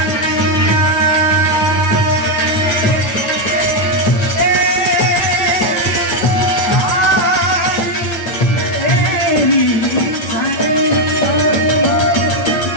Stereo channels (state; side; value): late; right; 9.4 ms